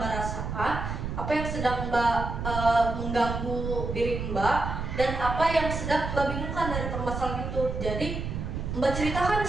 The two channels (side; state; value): right; noise; rumble, 4 dB below the sound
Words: rasakan, apa yang sedang Mbak mengganggu diri Mbak, dan apa yang sedang Mbak bingungkan dari permasalahan itu. Jadi Mbak ceritakan